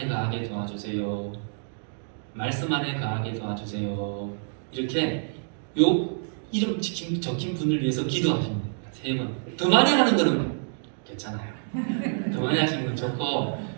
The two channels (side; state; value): left; silent; digital silence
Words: 거하게 도와주세요. 말씀 안에 거하게 도와주세요. 이렇게 요 이름 적힌 분을 위해서 기도하시면 됩니다. 3번. 더 많이 하는 거는 괜찮아요. 더 많이 하시는 건 좋고